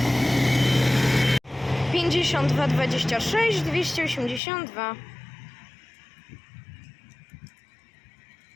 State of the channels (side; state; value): right; drops out; at 4.4 s